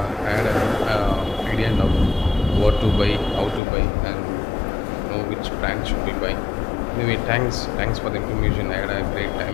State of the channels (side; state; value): right; drops out; at 3.6 s